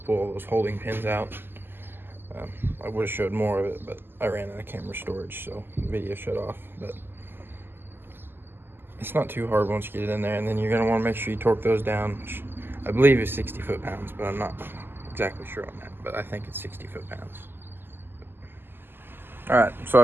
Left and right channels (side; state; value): left; late; 0.099 ms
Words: pull all those holding pins out. I would have showed more of it, but I ran out of camera storage, so the video shut off. But it's not too hard once you get it in there, and then you're going to want to make sure you torque those down, which I believe is 60 foot-pounds, but I'm not exactly sure on that, but I think it's 60 foot-pounds. Alright, so